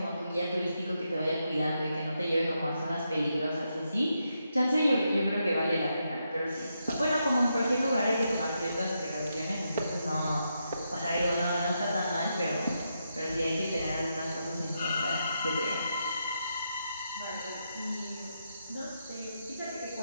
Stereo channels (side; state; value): both; inverted; correlation -0.83